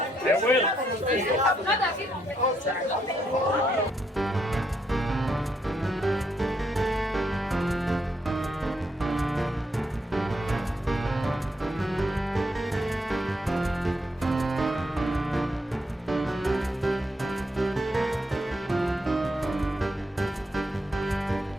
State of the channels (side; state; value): both; normal; correlation 0.76